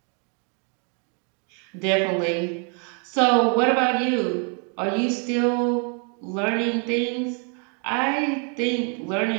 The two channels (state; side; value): quieter; left; 36.3 dB